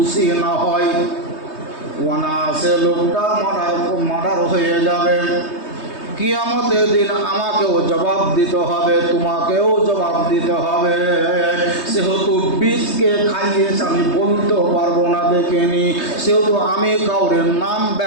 না হয়, অনায়াসে লোকটা মার্ডার হয়ে যাবে। কিয়ামতের দিন আমাকেও জবাব দিতে হবে, তোমাকেও জবাব দিতে হবে। সেহেতু বিষকে খাইয়েছে আমি বলতেও পারবো না দেখিনি, সেহেতু আমি কাউরের নাম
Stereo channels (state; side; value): late; right; 3.2 ms